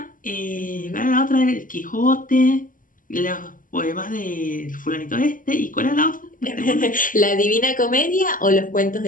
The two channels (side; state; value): right; late; 0.39 ms